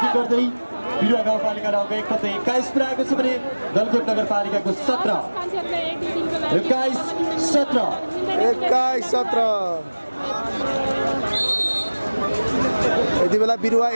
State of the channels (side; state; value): both; inverted; correlation -1.00